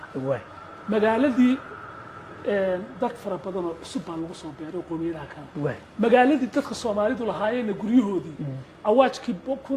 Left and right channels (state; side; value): identical; both; correlation 1.00